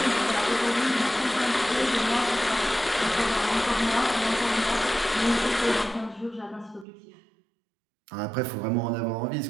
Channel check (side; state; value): left; drops out; at 6.9 s